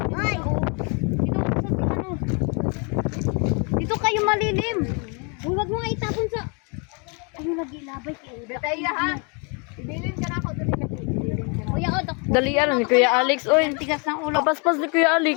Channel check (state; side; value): quieter; right; 34.8 dB